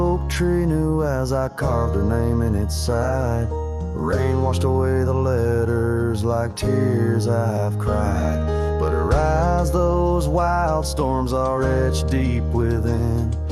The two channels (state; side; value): identical; both; correlation 1.00